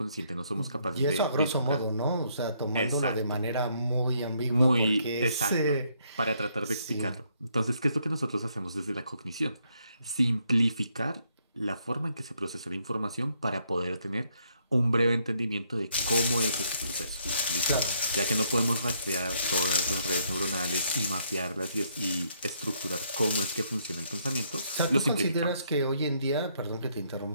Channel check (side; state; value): both; inverted; correlation -0.72